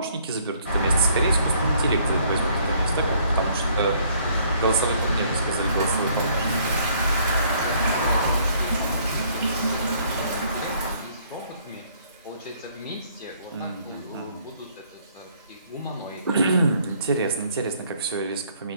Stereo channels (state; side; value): inverted; both; correlation -0.63